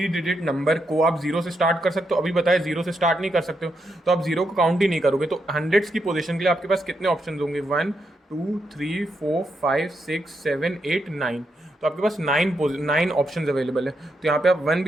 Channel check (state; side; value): normal; both; correlation 0.82